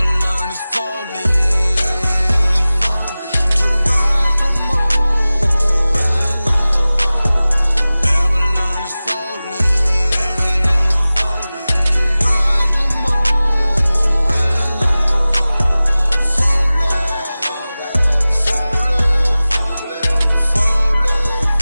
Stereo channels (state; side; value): inverted; both; correlation -0.97